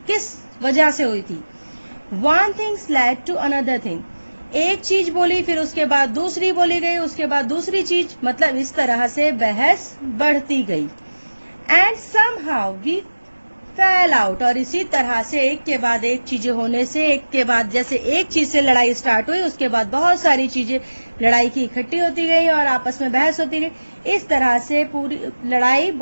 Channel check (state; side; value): inverted; both; correlation -1.00